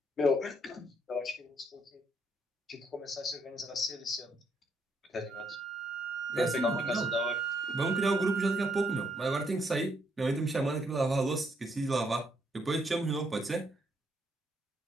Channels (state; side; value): normal; both; correlation 0.73